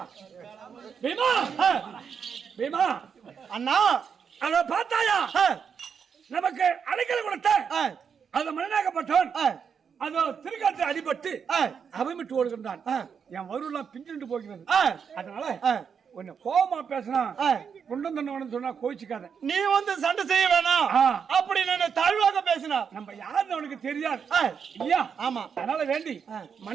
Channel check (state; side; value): quieter; left; 6.8 dB